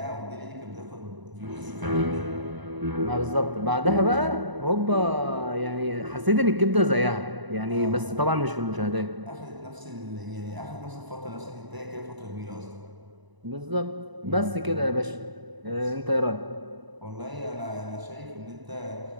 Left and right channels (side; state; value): left; late; 1.0 ms